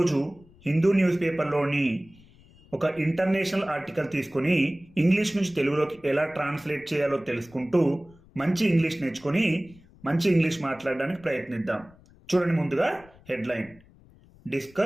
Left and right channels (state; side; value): noise; left; rumble, 26 dB below the sound